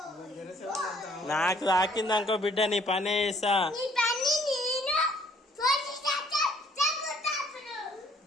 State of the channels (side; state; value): both; normal; correlation 0.62